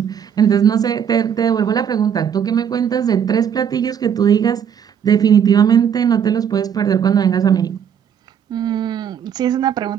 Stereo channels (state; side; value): quieter; left; 8.2 dB